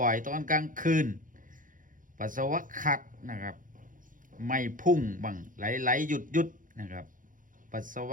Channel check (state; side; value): late; left; 0.39 ms